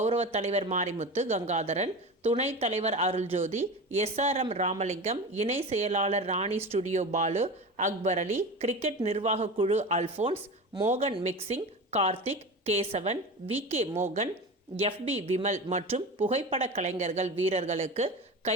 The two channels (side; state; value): both; normal; correlation 0.29